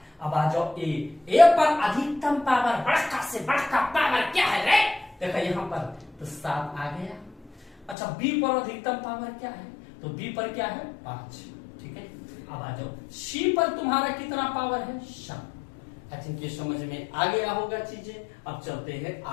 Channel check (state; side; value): drops out; right; at 8.0 s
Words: अब आ जाओ ए पर अधिकतम पावर, बड़का से बड़का पावर क्या है रे, देखा यहाँ पर तो 7 आ गया। अच्छा बी पर अधिकतम पावर क्या है, तो बी पर क्या है 5, ठीक है। अब आ जाओ सी पर तुम्हारा कितना पावर है 7। आई थिंक ये समझ में आ गया होगा चीजें। अब चलते हैं